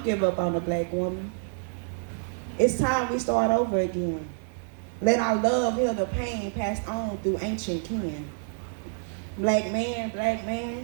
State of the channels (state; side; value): silent; left; digital silence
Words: give up on the black woman. It's time we start over again. Let our love heal the pain passed on through ancient kin. Black